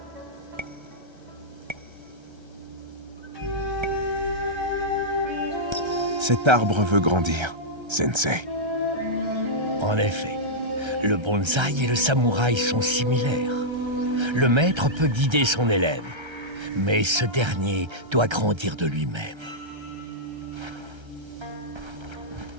Cet arbre veut grandir, Sensei. En effet, le bonsaï et le samouraï sont similaires. Le maître peut guider son élève, mais ce dernier doit grandir de lui-même.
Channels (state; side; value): late; left; 1.3 ms